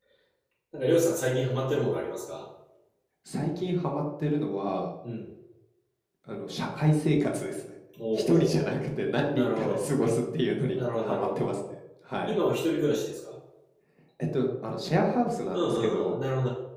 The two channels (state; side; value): identical; both; correlation 1.00